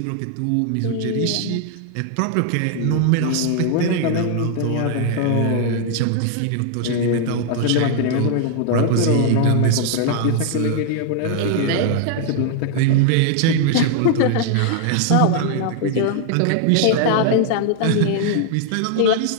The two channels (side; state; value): both; different; correlation 0.00